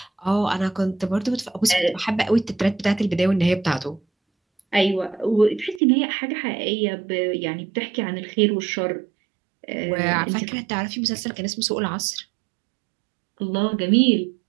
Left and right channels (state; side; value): drops out; left; at 5.8 s